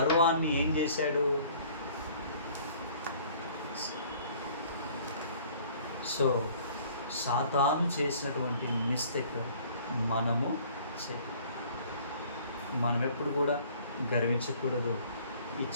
ఏం చేశాడు? సో సాతాను చేసినటువంటి మిస్టేక్ మనము మనం ఎప్పుడు కూడా గర్వించకూడదు.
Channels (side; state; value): both; inverted; correlation -0.54